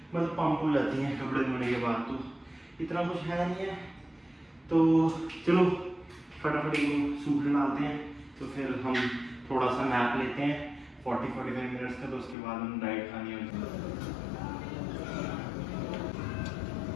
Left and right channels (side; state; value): right; drops out; at 12.4 s